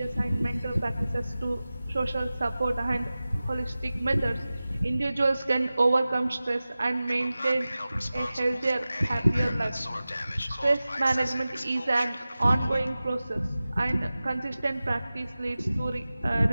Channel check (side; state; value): both; inverted; correlation -0.96